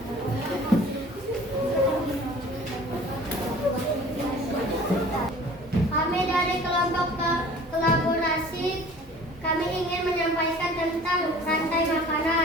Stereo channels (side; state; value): both; normal; correlation 0.47